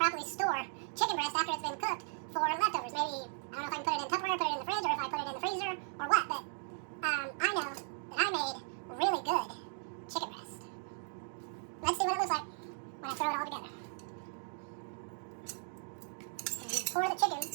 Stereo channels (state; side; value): silent; left; digital silence